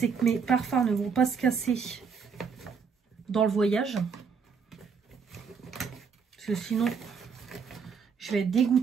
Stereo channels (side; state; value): left; quieter; 6.0 dB